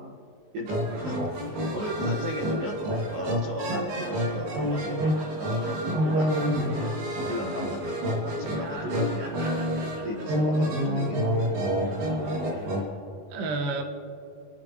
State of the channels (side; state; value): left; late; 19 ms